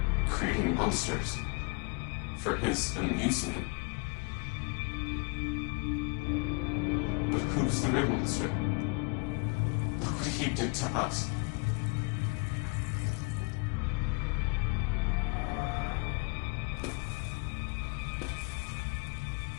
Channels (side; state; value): right; quieter; 30.3 dB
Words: Creating monsters. For his amusement. But who's the real monster? Look what he did to us.